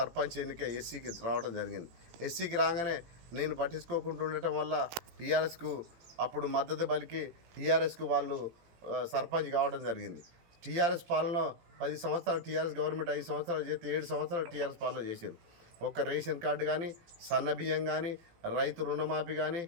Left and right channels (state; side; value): late; left; 18 ms